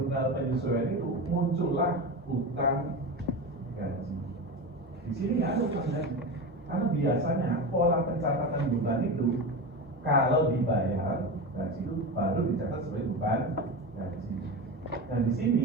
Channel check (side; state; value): both; normal; correlation 0.23